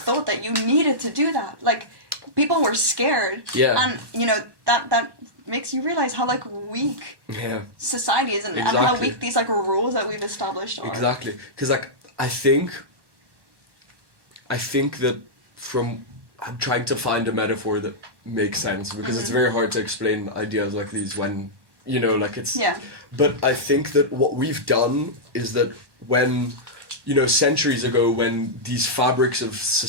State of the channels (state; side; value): late; left; 1.1 ms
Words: that you needed to do that. People were scared. Yeah. And that makes you realize how weak society is, and how weak these rules that we've established are. Exactly. Because I think that I'm trying to find a metaphor that makes sense, because it's very hard to explain ideas like these when it's. Yeah. But I think that what we've done is that when centuries ago, when these fabrics of